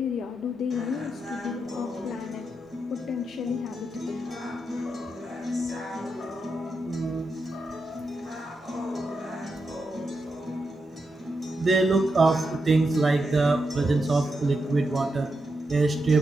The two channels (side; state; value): both; normal; correlation 0.85